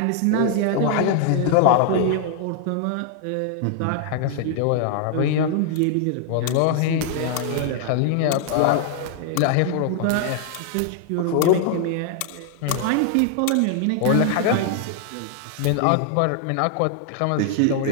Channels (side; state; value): both; different; correlation 0.00